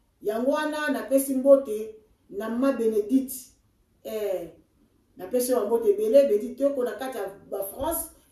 yango wana na pesi mbote na ma Bénédicte na pesi wa mbote belé Bénédicte ko na kati ya France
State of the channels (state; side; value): identical; both; correlation 1.00